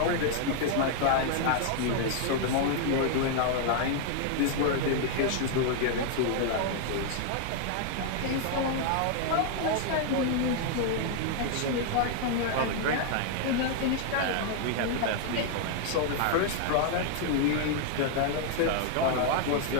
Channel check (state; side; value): different; both; correlation 0.00